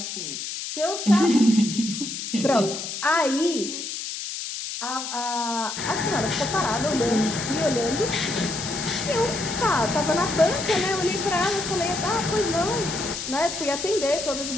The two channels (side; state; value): left; noise; hiss, 6 dB below the sound